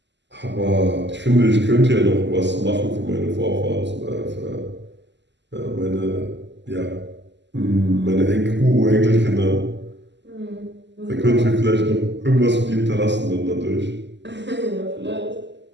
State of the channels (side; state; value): left; late; 0.51 ms